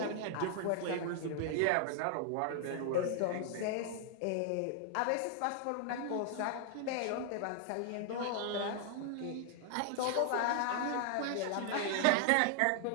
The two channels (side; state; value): both; different; correlation 0.00